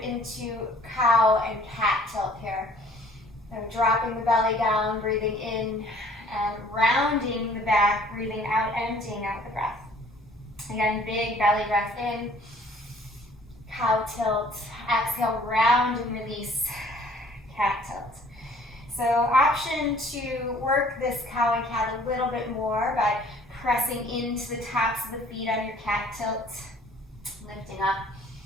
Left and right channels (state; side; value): normal; both; correlation 0.55